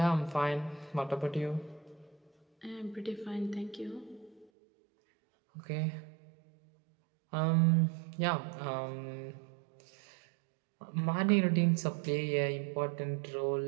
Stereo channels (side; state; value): left; drops out; at 4.5 s